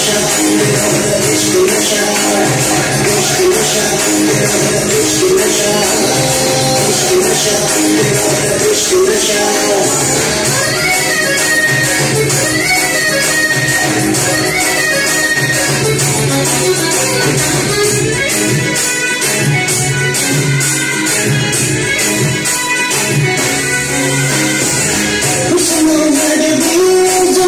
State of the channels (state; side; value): identical; both; correlation 1.00